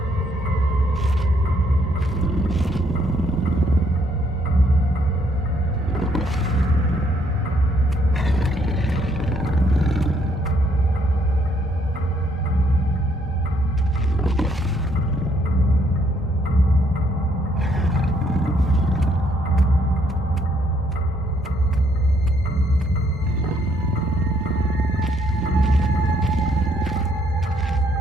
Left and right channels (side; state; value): both; normal; correlation 0.69